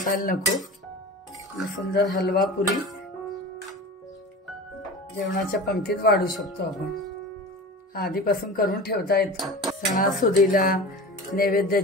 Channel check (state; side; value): normal; both; correlation 0.34